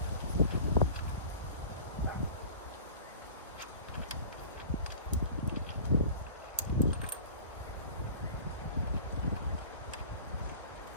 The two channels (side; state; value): both; inverted; correlation -0.41